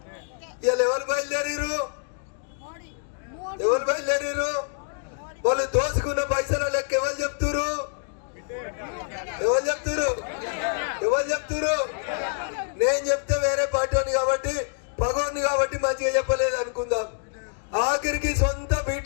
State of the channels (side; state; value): right; silent; 58 dB below the other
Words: ఇవాళ ఎవరు బయలుదేరారు? వాళ్ళు దోసుకున్న పైసల లెక్క ఎవరు చెప్తురు? నేను చెప్తే వేరే పార్టీ కాబట్టి పగోని కాబట్టి మంచిగా చెప్పలేదు అనుకుందాం. ఆఖరికి సొంత